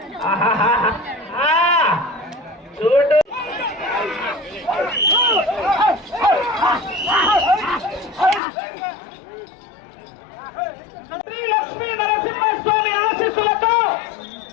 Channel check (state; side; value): drops out; right; at 8.4 s